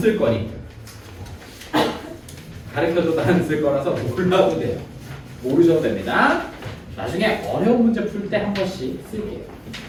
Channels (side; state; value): both; identical; correlation 1.00